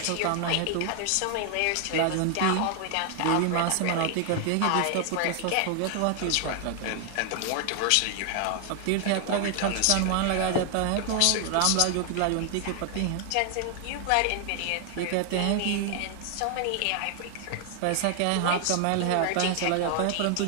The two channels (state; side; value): different; both; correlation 0.00